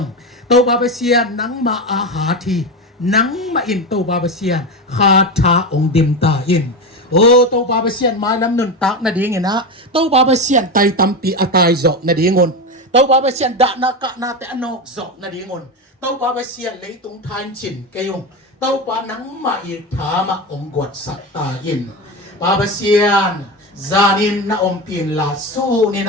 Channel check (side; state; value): both; normal; correlation 0.19